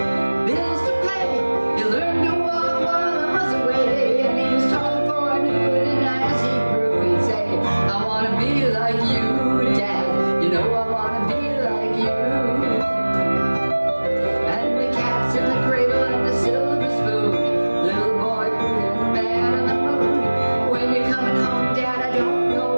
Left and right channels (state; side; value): inverted; both; correlation -1.00